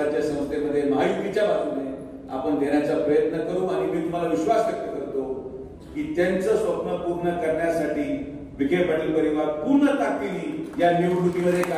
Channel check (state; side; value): identical; both; correlation 1.00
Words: संस्थेमध्ये महायुतीच्या बाजूने आपण देण्याचा प्रयत्न करू. आणि मी तुम्हाला विश्वास व्यक्त करतो की त्यांचं स्वप्न पूर्ण करण्यासाठी विखे पाटील परिवार पूर्ण ताकदीने या निवडणुकीमध्ये